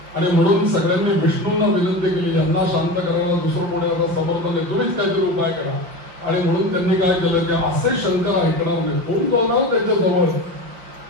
आणि म्हणून सगळ्यांनी विष्णूंना विनंती केली यांना शांत करायला दुसरं कोणी आता समर्थ नाही, तुम्हीच काहीतरी उपाय करा. आणि म्हणून त्यांनी काय केलं की असे शंकर ऐकणार नाही, कोण जाणार त्यांच्या जवळ.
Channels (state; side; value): late; left; 5.8 ms